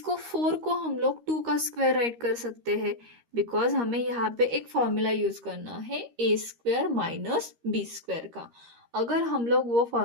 4 को हम लोग 2 का स्क्वायर राइट कर सकते हैं, बिकॉज हमें यहाँ पे एक फॉर्मूला यूज करना है a² - b² का। अगर हम लोग वो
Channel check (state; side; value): late; left; 13 ms